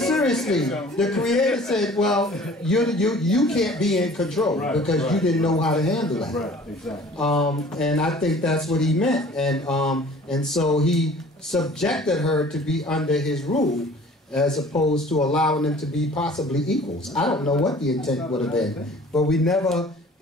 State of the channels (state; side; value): normal; both; correlation 0.48